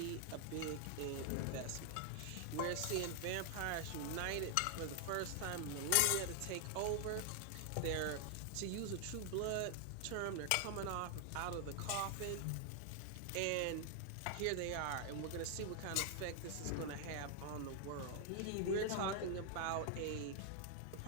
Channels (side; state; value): both; different; correlation 0.00